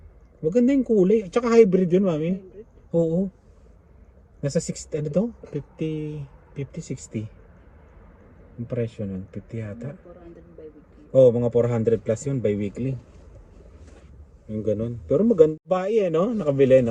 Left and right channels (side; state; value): both; identical; correlation 1.00